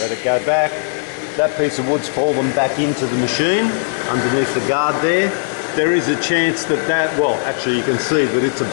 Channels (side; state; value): right; silent; 68 dB below the other